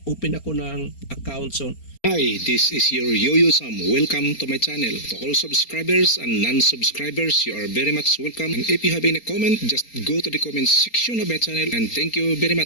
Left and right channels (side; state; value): right; late; 4.3 ms